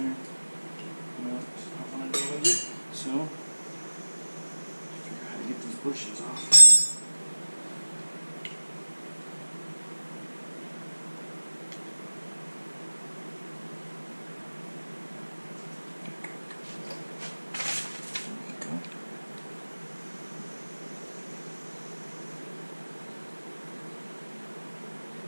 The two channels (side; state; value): both; inverted; correlation -1.00